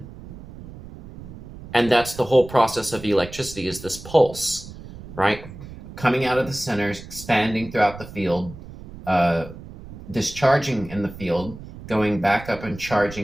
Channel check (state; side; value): noise; right; rumble, 15 dB below the sound